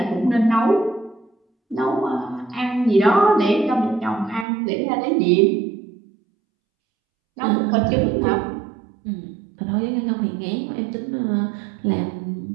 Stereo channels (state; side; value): drops out; left; at 4.5 s